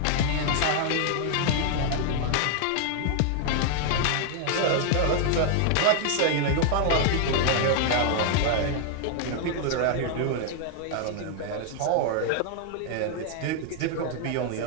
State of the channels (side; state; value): both; different; correlation 0.00